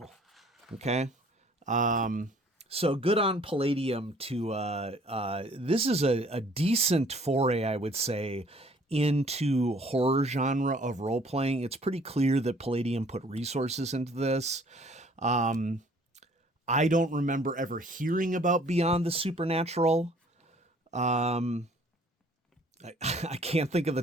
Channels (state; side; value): normal; both; correlation 0.57